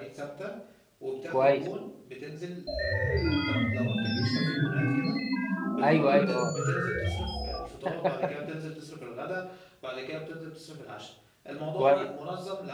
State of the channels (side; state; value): both; identical; correlation 1.00